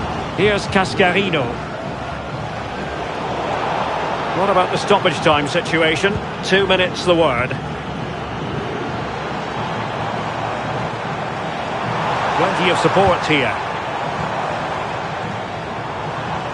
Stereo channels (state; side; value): identical; both; correlation 1.00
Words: Here's Cascarino. What about the stoppage time situation? 2 minutes the word. Plenty of support here.